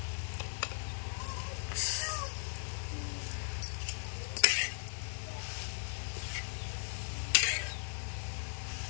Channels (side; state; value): right; silent; digital silence